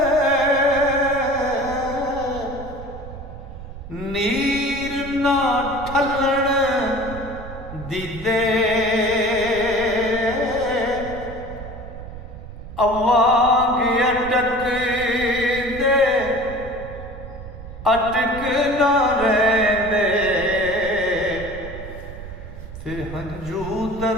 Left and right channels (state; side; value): noise; right; rumble, 12 dB below the sound